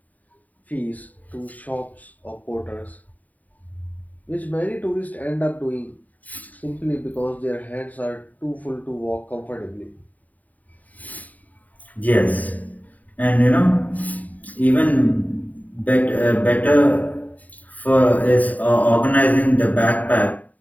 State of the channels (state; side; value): late; right; 0.075 ms